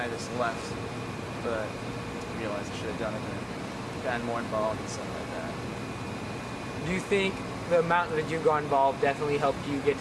of just left, but I realized I should have done it and gotten more involved and stuff like that. Do you think the amount that you got involved definitely helped you get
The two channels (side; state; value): both; identical; correlation 1.00